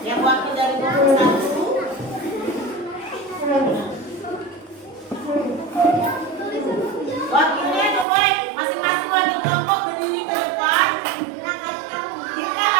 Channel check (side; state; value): left; drops out; at 8.1 s